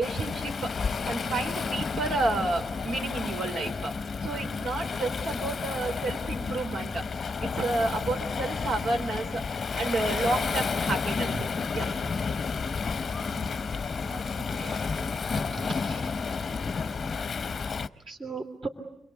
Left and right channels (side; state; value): both; normal; correlation 0.82